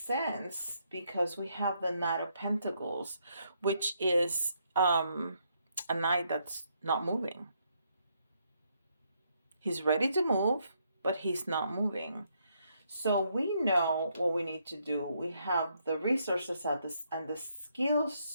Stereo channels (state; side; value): inverted; both; correlation -0.75